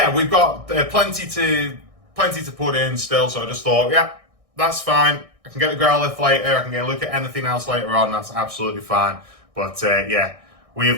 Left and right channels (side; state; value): left; late; 1.6 ms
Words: we've got plenty to put in still. So I just thought, yeah, that's fine. I can get the Growlithe later. I can get a look at anything else later on. That's absolutely fine. But yeah, we